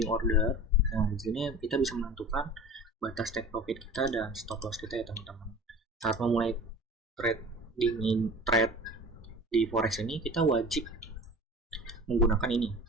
order. Nah, di sini kita bisa menentukan batas take profit kita dan stop loss kita ya teman-teman. Saat memulai trade di forex ini, kita wajib menggunakan ini,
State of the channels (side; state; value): both; normal; correlation 0.38